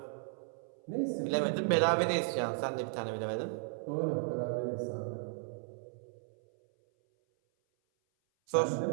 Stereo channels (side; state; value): left; silent; 55 dB below the other